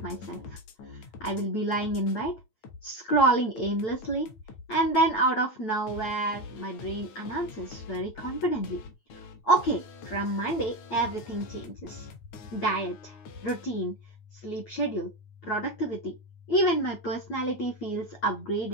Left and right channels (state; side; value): late; right; 9.2 ms